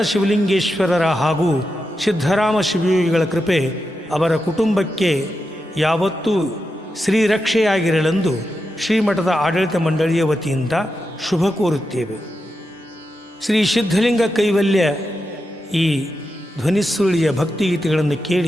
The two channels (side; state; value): both; normal; correlation 0.88